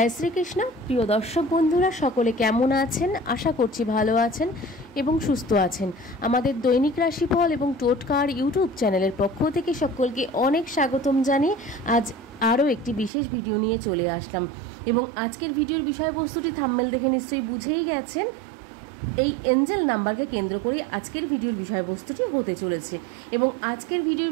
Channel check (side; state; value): left; drops out; at 13.1 s